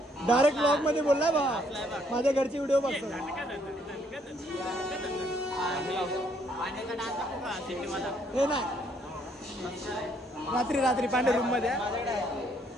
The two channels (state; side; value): normal; both; correlation 0.68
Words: डायरेक्ट ब्लॉग मध्ये बोललाय भावा. माझ्या घरची व्हिडिओ बघतो. पाण्याचा डान्स दाखवू का सिटीवाला? हे नाही रात्री पांडे रूम मध्ये राहतो